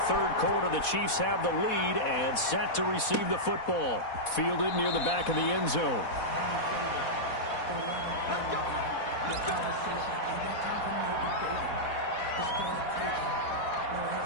3rd quarter. The Chiefs have the lead and set to receive the football. Fielded near the back of the end zone.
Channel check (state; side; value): late; right; 4.1 ms